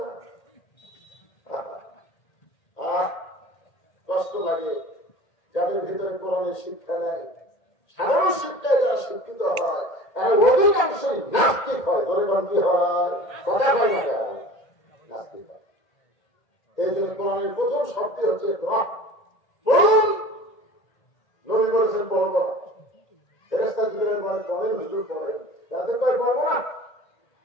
না? কষ্ট লাগে যাদের ভিতরে কোরআনের শিক্ষা নেই। সাধারণ শিক্ষায় যারা শিক্ষিত হয় তারা অধিকাংশই নাস্তিক হয়। ধরে কোন কি হয়? কথা হয় না, নাস্তিক হয়। এই জন্য কোরআনের প্রথম শব্দ হচ্ছে বলুন। নবী বলেছেন পড়ব না, ফেরেশতা জিবরাইল বলে পড়েন, হুজুর পড়েন, রাতে কয় পড়বো না।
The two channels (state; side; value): late; right; 1.8 ms